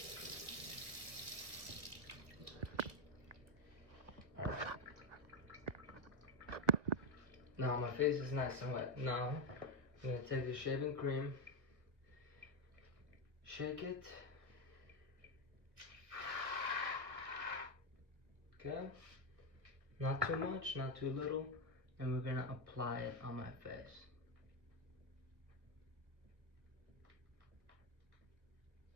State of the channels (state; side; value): late; left; 1.4 ms